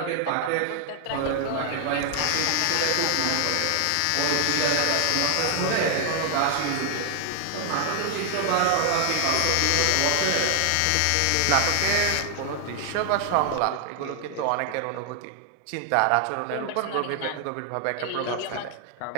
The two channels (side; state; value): both; different; correlation 0.00